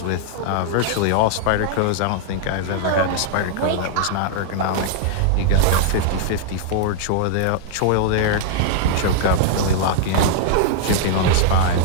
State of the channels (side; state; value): both; different; correlation -0.01